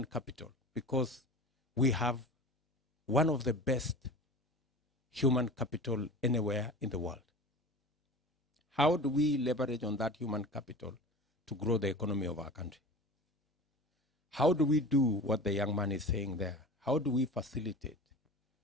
capital? Because we have one of the best human capital anywhere in the world. How do we leverage on that human capital to grow the economy of our country? How do we do what the young man is saying there? How do we facilitate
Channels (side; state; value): both; normal; correlation 0.36